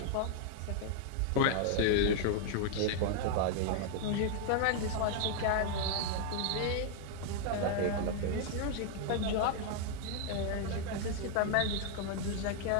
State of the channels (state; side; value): different; both; correlation 0.00